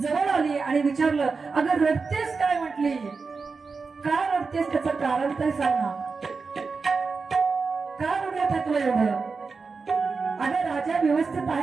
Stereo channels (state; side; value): quieter; left; 4.6 dB